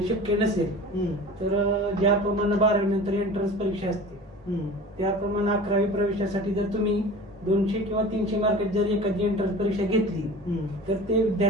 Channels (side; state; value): both; normal; correlation 0.38